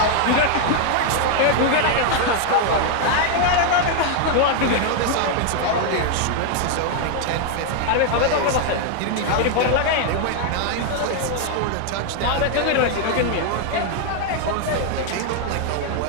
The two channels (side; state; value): both; different; correlation 0.00